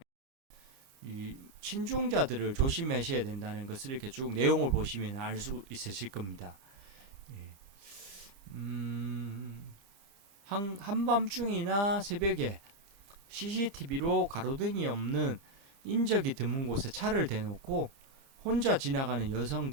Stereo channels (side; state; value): left; late; 30 ms